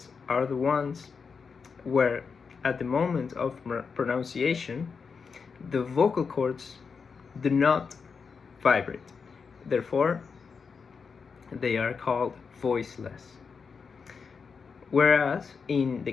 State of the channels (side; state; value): right; quieter; 5.5 dB